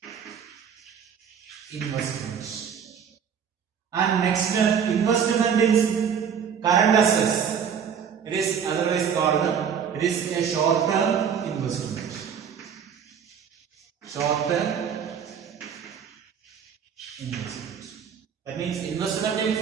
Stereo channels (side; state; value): left; quieter; 7.5 dB